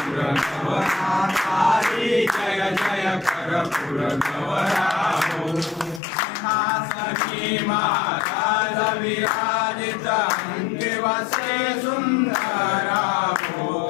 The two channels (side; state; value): right; drops out; at 6.0 s